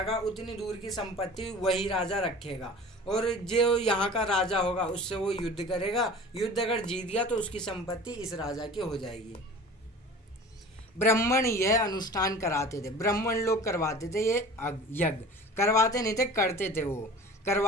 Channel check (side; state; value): both; normal; correlation 0.40